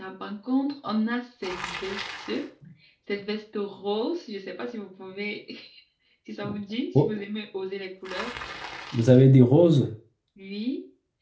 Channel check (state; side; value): identical; both; correlation 1.00